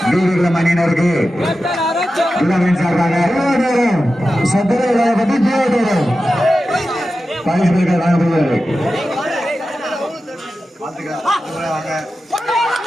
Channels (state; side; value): normal; both; correlation 0.92